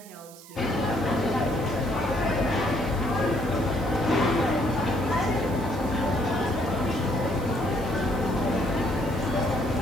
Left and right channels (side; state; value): right; noise; hiss, 20 dB below the sound